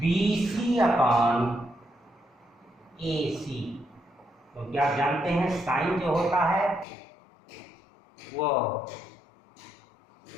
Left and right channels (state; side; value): drops out; right; at 6.9 s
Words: BC upon AC, क्योंकि आप जानते हैं साइन जो होता है वो